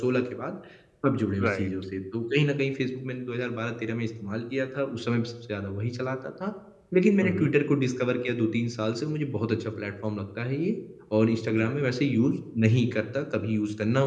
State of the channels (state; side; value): identical; both; correlation 1.00